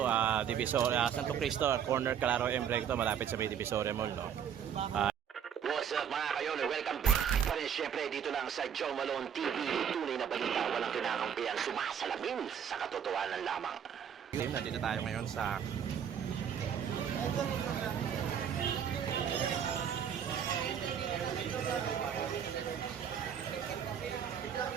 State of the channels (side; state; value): left; quieter; 8.3 dB